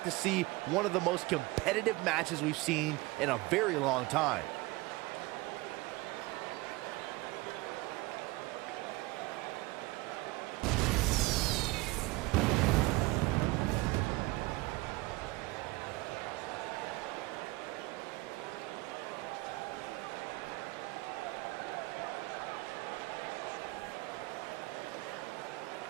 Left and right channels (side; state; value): left; quieter; 21.5 dB